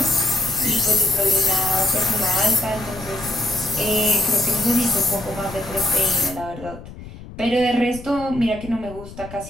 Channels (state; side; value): noise; left; rumble, 15 dB below the sound